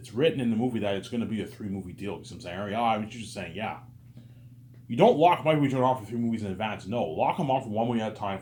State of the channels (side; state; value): both; identical; correlation 1.00